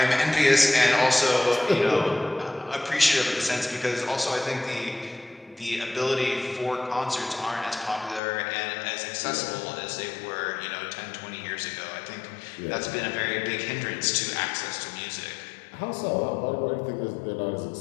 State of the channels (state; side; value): drops out; right; at 8.2 s